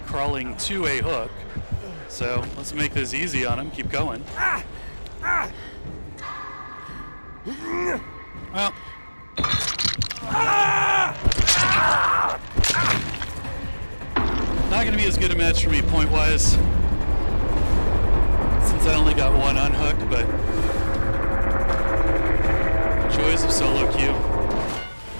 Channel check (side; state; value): both; inverted; correlation -1.00